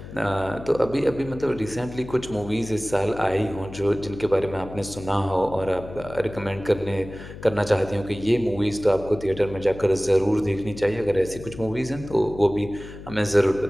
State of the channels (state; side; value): noise; left; hum, 14 dB below the sound